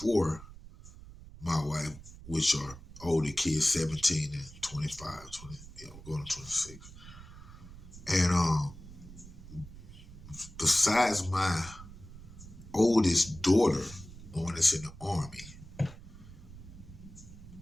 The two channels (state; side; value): noise; right; rumble, 16 dB below the sound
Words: my wife, which are older kids, 17 and 25, 20, going to 26. And besides my oldest daughter, the one that's in the army,